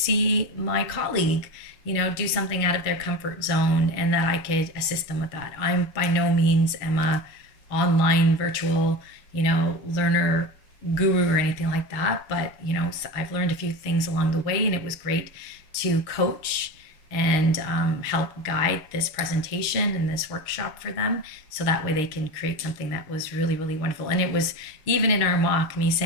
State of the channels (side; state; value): right; late; 6.4 ms